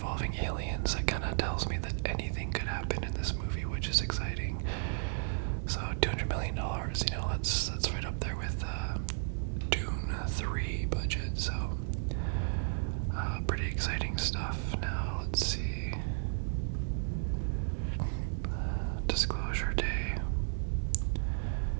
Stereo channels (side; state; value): left; silent; digital silence